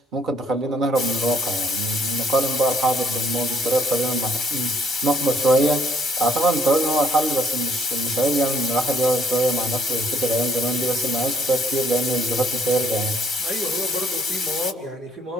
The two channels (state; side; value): normal; both; correlation 0.65